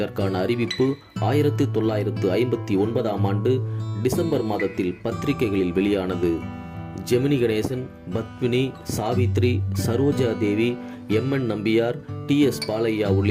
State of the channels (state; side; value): identical; both; correlation 1.00